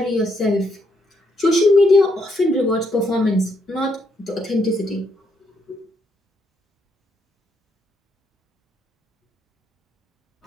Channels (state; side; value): normal; both; correlation 0.75